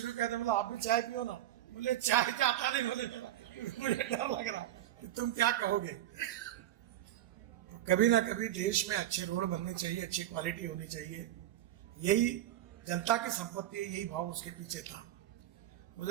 किया था, बोला आप भी चाय पियो ना। मुझे चाय तो आता नहीं, बोले मुझे डर लग रहा कि तुम क्या कहोगे। तो कभी ना कभी देश में अच्छे रोड बनने चाहिए, अच्छी क्वालिटी होनी चाहिए, यही जनता की संपत्ति है, यही भाव उसके पीछे था।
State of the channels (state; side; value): quieter; left; 13.1 dB